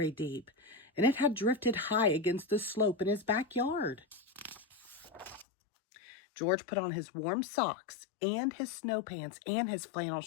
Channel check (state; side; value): drops out; right; at 5.5 s